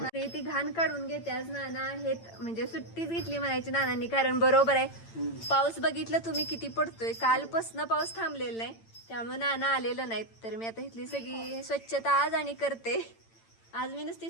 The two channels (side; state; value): right; late; 8.9 ms